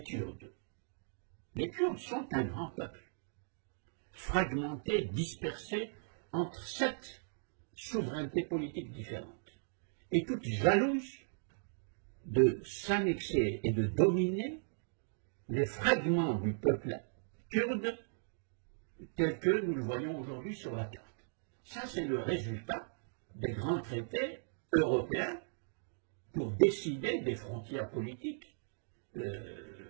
Kurdes. Les Kurdes sont un grand peuple, fragmenté, dispersé entre 7 souverainetés politiques différentes, et toutes jalouses de s'annexer et de dominer les fragments du peuple kurde tels que nous le voyons aujourd'hui sur la carte. Ça, c'est le résultat des grands traités européens pour décider des frontières politiques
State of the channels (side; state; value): left; silent; digital silence